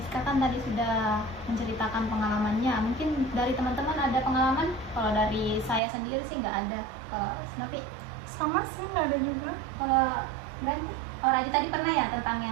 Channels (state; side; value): drops out; left; at 5.8 s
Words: kan tadi sudah menceritakan pengalamannya. Mungkin dari teman-teman ada pengalaman? Kalau dari saya sendiri sih nggak ada. Kalau Snovi? Sama sih, nggak ada juga. Kalau Brandy? Oh Radit tadi pernah ya tentang